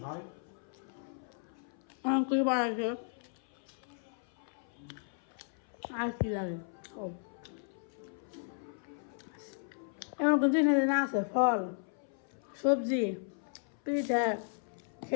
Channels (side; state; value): right; silent; 54 dB below the other